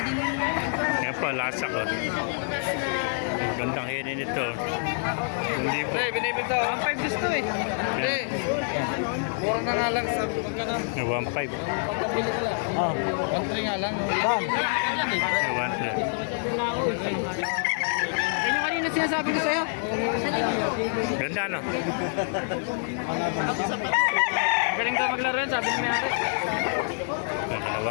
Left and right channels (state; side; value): silent; right; 60 dB below the other